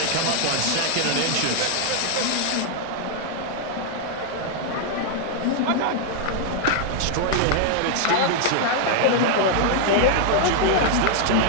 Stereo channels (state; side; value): different; both; correlation 0.00